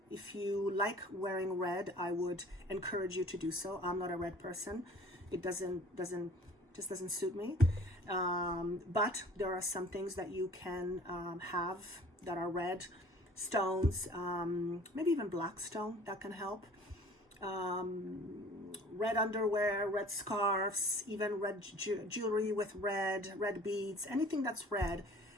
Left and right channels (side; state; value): both; normal; correlation 0.49